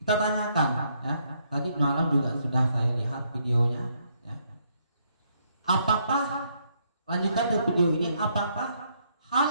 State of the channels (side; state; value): both; inverted; correlation -0.72